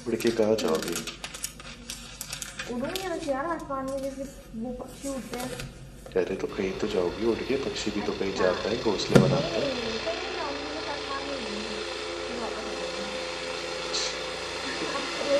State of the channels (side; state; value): both; identical; correlation 1.00